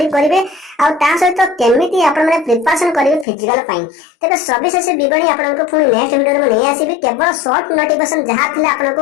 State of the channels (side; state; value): right; drops out; at 3.2 s